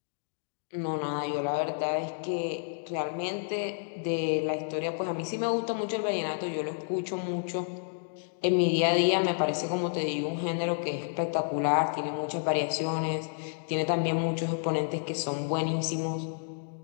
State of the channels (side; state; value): right; silent; digital silence